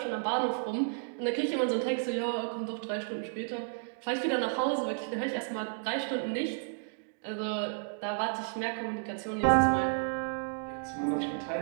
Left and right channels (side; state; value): left; silent; digital silence